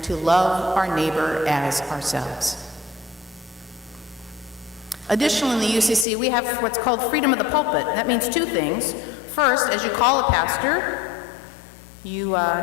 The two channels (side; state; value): right; drops out; at 6.1 s